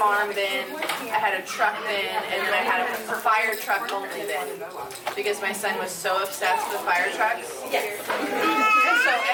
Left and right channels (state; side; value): identical; both; correlation 1.00